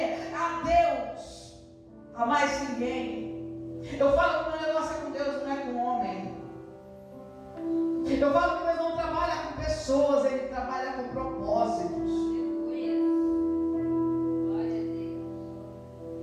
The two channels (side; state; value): both; identical; correlation 1.00